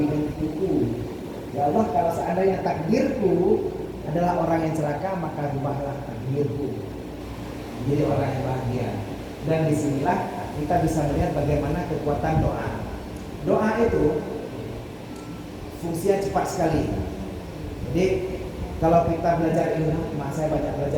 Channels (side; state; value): both; identical; correlation 1.00